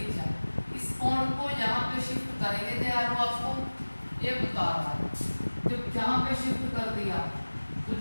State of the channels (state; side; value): inverted; both; correlation -1.00